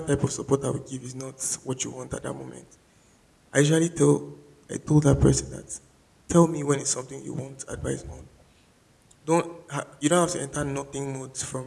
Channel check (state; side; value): identical; both; correlation 1.00